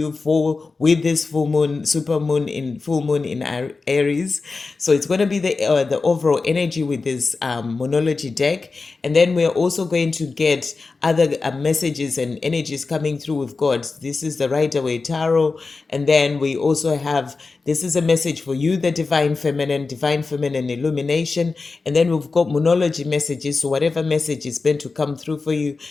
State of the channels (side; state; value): right; quieter; 4.1 dB